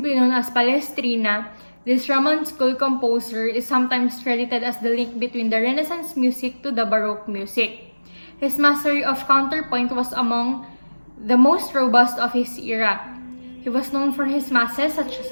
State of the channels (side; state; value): both; inverted; correlation -1.00